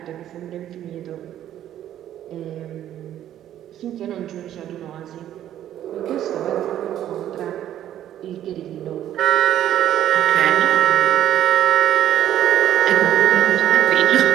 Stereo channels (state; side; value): quieter; left; 11.6 dB